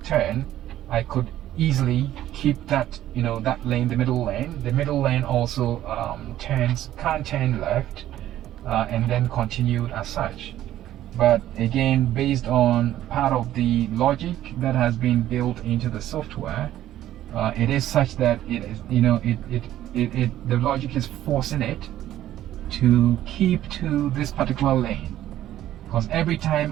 turn, I could easily keep that, that lane, the middle lane. The middle lane also can't turn left and then continued as such. But again, based on part of the logic that has been built into the software, it is such that it is, the logic is forcing it to keep to this particular lane, because every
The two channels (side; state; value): left; quieter; 12.9 dB